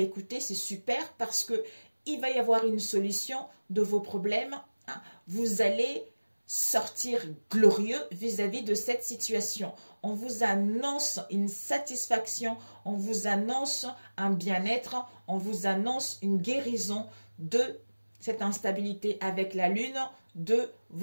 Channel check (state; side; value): inverted; both; correlation -1.00